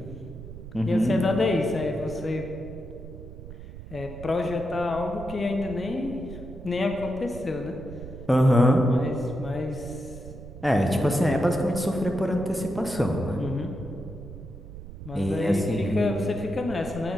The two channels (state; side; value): noise; right; rumble, 13 dB below the sound